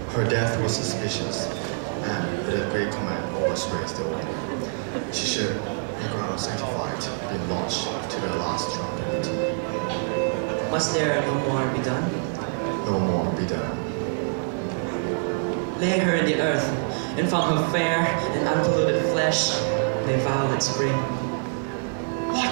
Her death was suspicious, and with a great command was raised the order. She should, in ground sanctified, be launched to the last trumpet. Must there no more be done? No more be done. Lay her in the earth, and from her fair and unpolluted flesh may violets spring.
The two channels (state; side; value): silent; left; 61 dB below the other